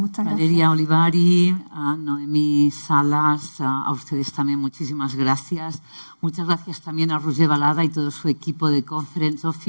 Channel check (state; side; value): inverted; both; correlation -1.00